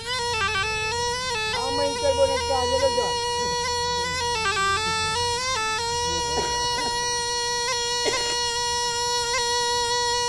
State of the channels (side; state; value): both; identical; correlation 1.00